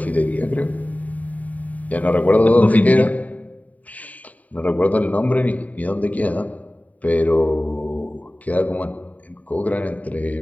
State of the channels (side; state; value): right; late; 0.072 ms